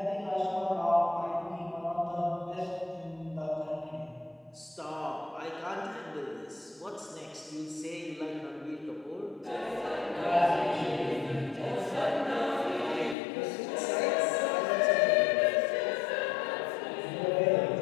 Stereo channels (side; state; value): right; drops out; at 13.2 s